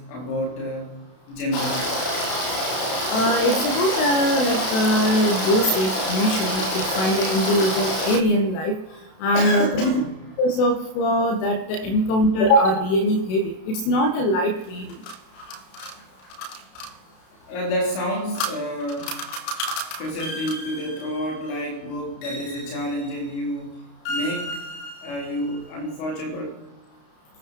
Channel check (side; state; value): right; late; 32 ms